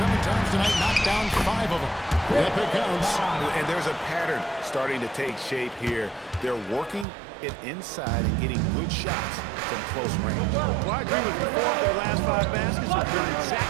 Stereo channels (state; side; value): drops out; left; at 7.1 s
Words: times tonight, knocked down 5 of them. Yep, it counts. And there's a pattern starting to take shape here. They're working it inside and getting good shots from close range. Well, I agree with you. 4 of their last 5 baskets have done